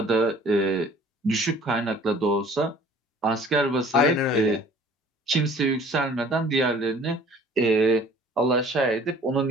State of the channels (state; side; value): normal; both; correlation 0.51